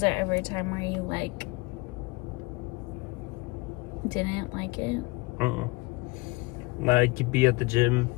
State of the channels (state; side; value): quieter; right; 24.4 dB